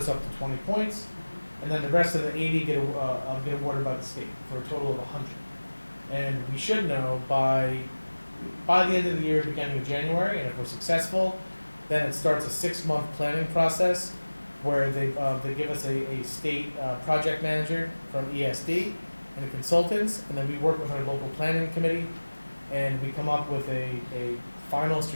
up to 20 points, and then the rest of the 80 get awarded by the state for a total of 100. And we should know by the end of the year, beginning of January, and if we're successful, then it starts a 6-month planning process where they give us a state project manager from ESD and the consultants, and then we work with our local planning committee, and we come up with a final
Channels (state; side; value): inverted; both; correlation -1.00